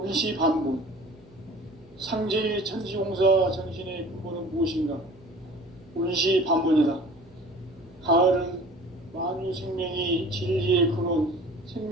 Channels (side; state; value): right; noise; hum, 27 dB below the sound